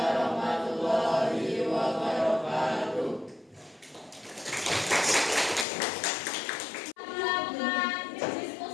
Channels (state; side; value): drops out; right; at 5.7 s